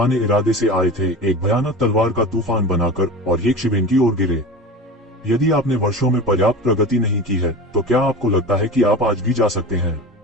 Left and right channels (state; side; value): normal; both; correlation 0.32